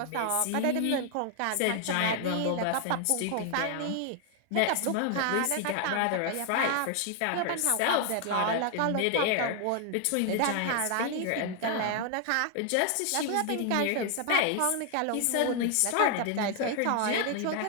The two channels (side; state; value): both; different; correlation 0.00